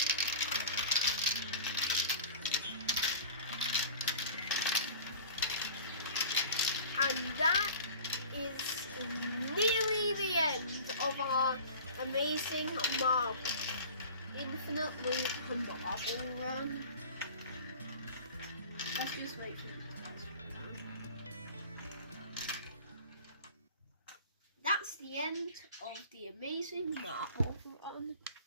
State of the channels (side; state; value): both; inverted; correlation -0.40